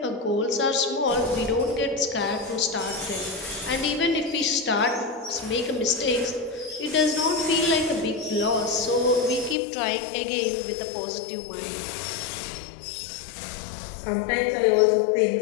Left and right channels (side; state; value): right; drops out; at 9.6 s